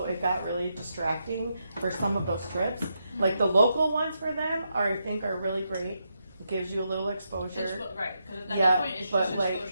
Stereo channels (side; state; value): both; inverted; correlation -0.83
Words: it got really distracting for some of those trips. Like the local ones for them I think are really great. It gives you a little exposure. Right, because at that point it's just